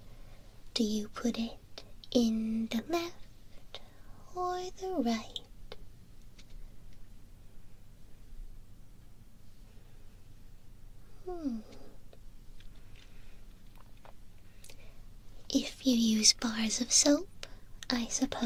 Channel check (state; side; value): identical; both; correlation 1.00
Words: Do you put it in the left or the right? If you use bars of soap, I